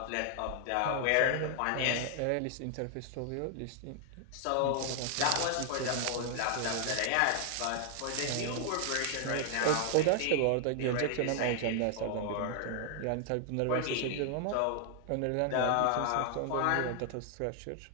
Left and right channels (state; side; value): different; both; correlation 0.00